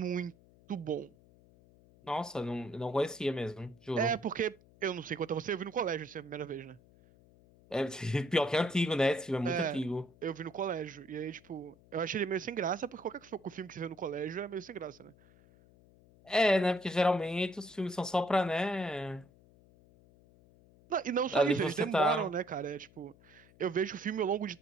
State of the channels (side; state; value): left; noise; hum, 27 dB below the sound